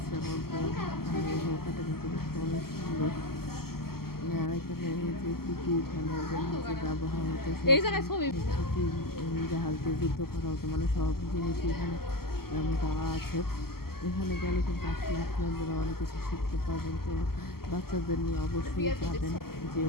আমার বোন। আর এই নৌকাটা কিন্তু দেখতে অনেক সুন্দর। আর এখানে যে কী যে ব্যবহার হতো, এই জায়গায় ছবি জাহাজ দিয়ে যুদ্ধ করা হতো, মানে সব জিনিসই এখানে দেওয়া আছে। এখানে গেলে কিন্তু আসলে আপনারা অনেক কিছু শিখতে পারবেন। তো বাচ্চাদের নিয়ে অবশ্যই যাবেন, যে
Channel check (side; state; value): right; late; 0.94 ms